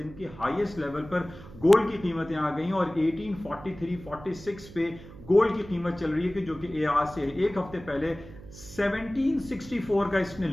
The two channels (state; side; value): noise; right; hum, 17 dB below the sound